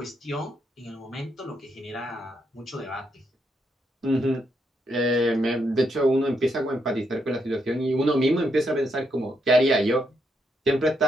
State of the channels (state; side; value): normal; both; correlation 0.78